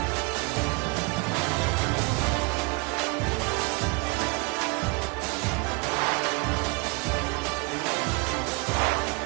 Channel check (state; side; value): quieter; left; 29.7 dB